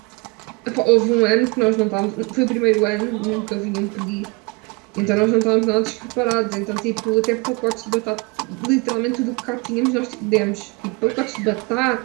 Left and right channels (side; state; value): left; quieter; 27.9 dB